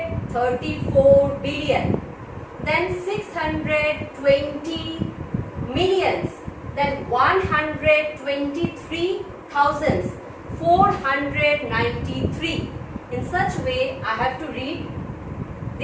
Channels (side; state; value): both; identical; correlation 1.00